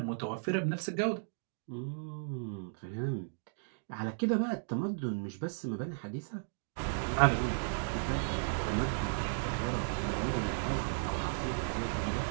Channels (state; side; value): silent; left; digital silence